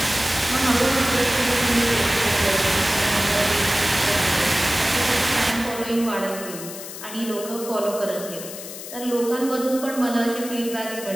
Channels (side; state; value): left; noise; hiss, 11 dB below the sound